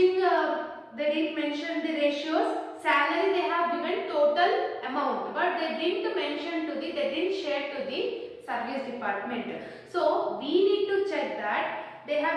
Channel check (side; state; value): both; identical; correlation 1.00